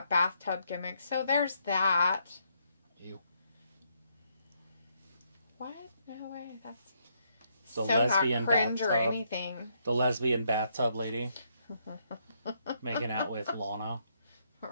bathtub gimmick. So there's that. Ew. What? No way. That's the so lesbian not cringe bathtub. or anything. The lesbian bathtub lady making out with Lana.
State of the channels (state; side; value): inverted; both; correlation -0.75